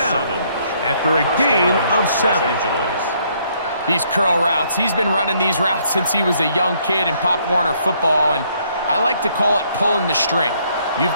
after a gain of 7. These curl routes, he's been running these routes since he was a young kid in Pop Warner football, and I like to call it pulling the string.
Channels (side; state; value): both; inverted; correlation -0.68